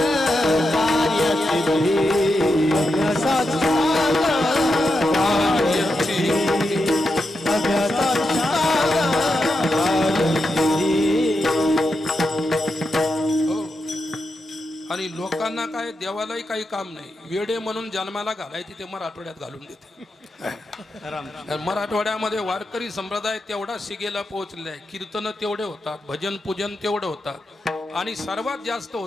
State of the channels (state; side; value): normal; both; correlation 0.86